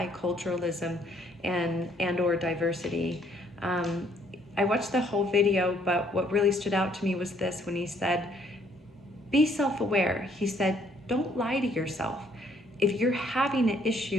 and or diversity. I watched the whole video, but what really stood out to me was this when he said, be self-aware. He said, don't lie to yourself. If you're having an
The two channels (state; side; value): normal; both; correlation 0.65